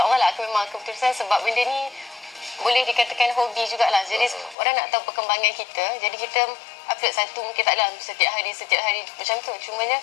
lah akan memang keputusan, sebab benda ni boleh dikatakan hobi jugalah. Jadi orang nak tahu perkembangan kita, jadi kita upload satu, mungkin tak dalam setiap hari macam tu. Cumanya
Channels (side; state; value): right; drops out; at 4.5 s